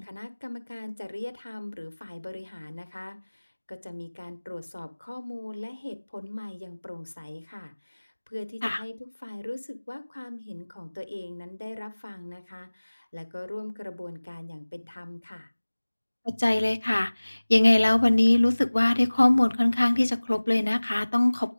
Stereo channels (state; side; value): inverted; both; correlation -1.00